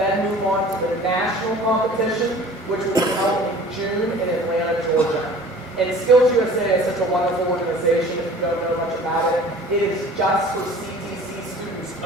move on to the national competition, which will be held in June in Atlanta, Georgia. And Skills USA is such a wonderful organization. If you don't know much about it, it is just for CTC students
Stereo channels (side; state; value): both; normal; correlation 0.46